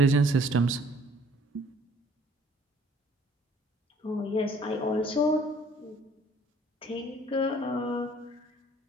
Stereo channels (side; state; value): both; normal; correlation 0.57